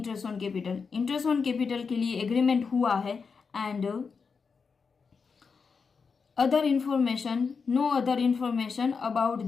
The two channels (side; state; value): right; quieter; 5.3 dB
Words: on capital, interest on capital के लिए एग्रीमेंट हुआ है and other information, no other information about